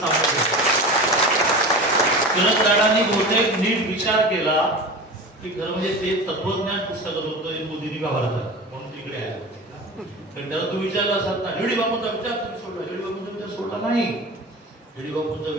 दादांनी बहुतेक नीट विचार केला की खरं म्हणजे ते तत्वज्ञान पुस्तकात होतं मोदींनी का भारतात म्हणून तिकडे आहे. कारण त्याला तू विचारला असत ना दीडी बापूंचा विचार तुम्ही सोडला, दीडी बापूंचा विचार सोडला नाही. दीडी बापूंचा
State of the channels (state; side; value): normal; both; correlation 0.32